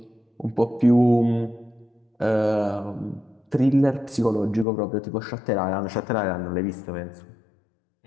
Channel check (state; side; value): drops out; right; at 4.7 s